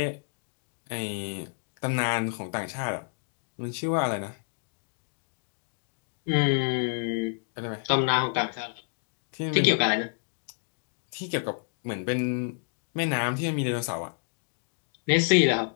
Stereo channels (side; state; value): right; silent; digital silence